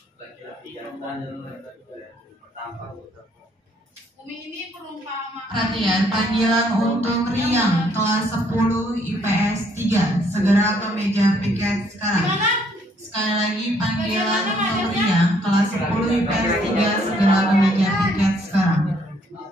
laki-laki jantan pertama. Umi ini perumpamaan. Perhatian, panggilan untuk Riang kelas 10 IPS 3. Segera ke meja piket sekarang. Gimana? Sekali lagi, panggilan untuk Riang kelas 10 IPS 3. Segera ke meja piket sekarang.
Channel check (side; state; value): both; normal; correlation 0.67